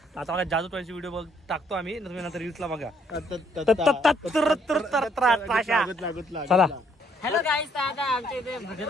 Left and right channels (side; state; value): both; normal; correlation 0.68